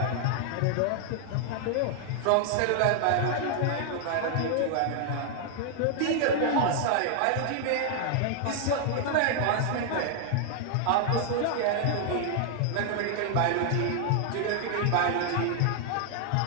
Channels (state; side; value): different; both; correlation 0.00